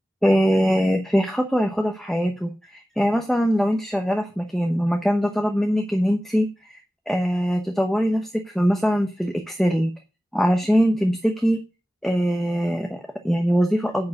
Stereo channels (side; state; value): both; normal; correlation 0.95